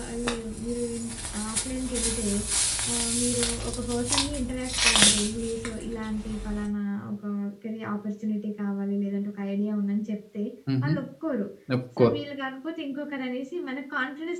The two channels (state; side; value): identical; both; correlation 1.00